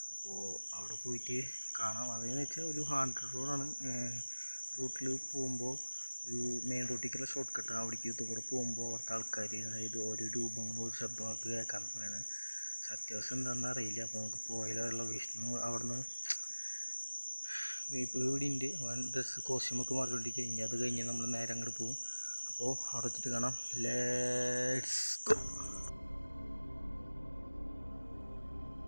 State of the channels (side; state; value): both; inverted; correlation -1.00